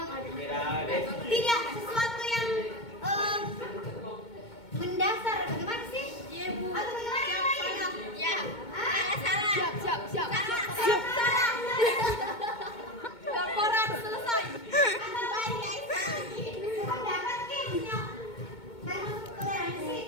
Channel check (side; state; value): right; late; 2.2 ms